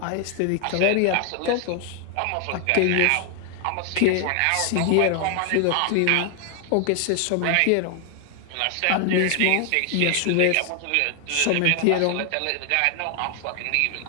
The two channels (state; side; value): different; both; correlation 0.00